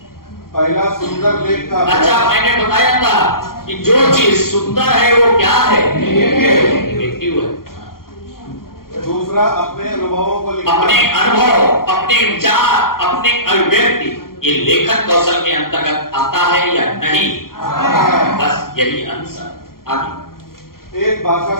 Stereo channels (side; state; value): right; late; 0.92 ms